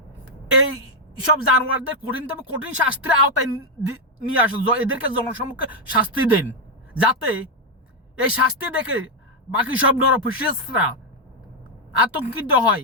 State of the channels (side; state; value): both; normal; correlation 0.02